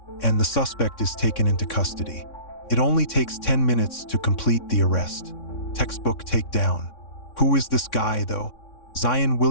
and the suspect is taken into custody. It only takes 10 minutes to complete the arrest. Textbook takedown. Who is this guy, though? Zion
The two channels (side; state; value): right; late; 3.6 ms